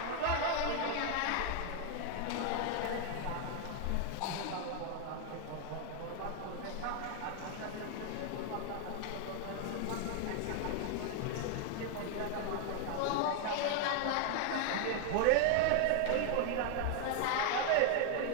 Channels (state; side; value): different; both; correlation 0.01